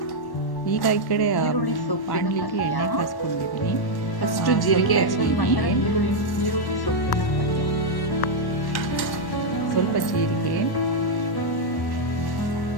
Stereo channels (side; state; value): right; late; 1.1 ms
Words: ಈಗ ಈ ಕಡೆ ಬಾಣಲಿಗೆ ಎಣ್ಣೆ ಕಾಸ್ಕೊಂಡಿದ್ದೀನಿ. ಫಸ್ಟು ಜೀರಿಗೆ ಹಾಕಿದ್ದೀನಿ, ಈರುಳ್ಳಿ ಸೊಪ್ಪಿನ ಪಲ್ಯ, ಸ್ವಲ್ಪ ಜೀರಿಗೆ,